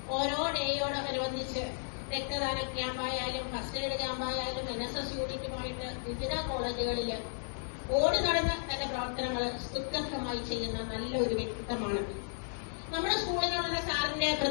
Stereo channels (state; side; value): silent; right; digital silence